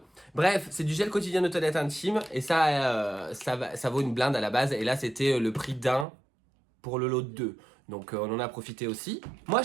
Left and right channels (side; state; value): left; drops out; at 6.1 s